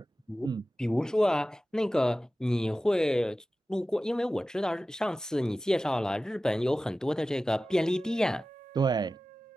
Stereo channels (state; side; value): normal; both; correlation 0.95